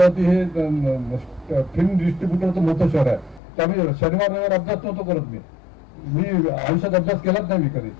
हे फिल्म डिस्ट्रीब्युटरचं मोठं शहर आहे. तर आम्ही शनिवार रविवार अभ्यास नव्हतो करत. मी आयुष्यात अभ्यास केलाच नाही मी कधी.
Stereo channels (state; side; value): drops out; right; at 3.4 s